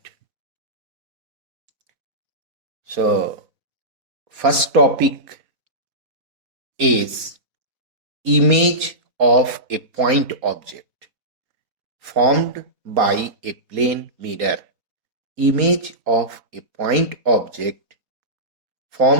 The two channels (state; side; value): late; left; 4.0 ms